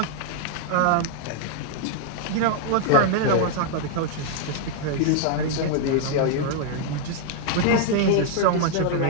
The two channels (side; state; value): both; different; correlation 0.00